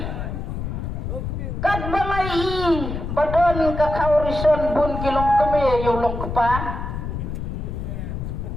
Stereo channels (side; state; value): left; noise; rumble, 5 dB below the sound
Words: Kat balai badan kakaurison bun kilang kami ya yulong kepa.